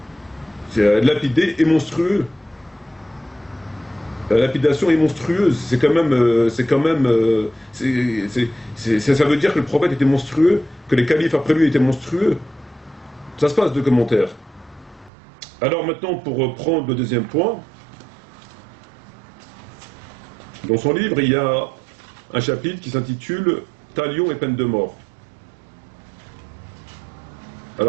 Lapider est monstrueux. La lapidation est monstrueuse. C'est quand même, ça veut dire que le prophète était monstrueux, que les califes après lui étaient monstrueux. Ça se passe de commentaires. Alors maintenant, pour prendre le deuxième point, dans son livre, il y a un chapitre qui s'intitule « Talion et peine de mort ».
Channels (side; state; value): left; drops out; at 15.1 s